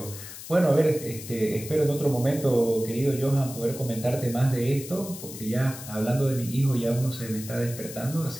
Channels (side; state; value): left; noise; hiss, 12 dB below the sound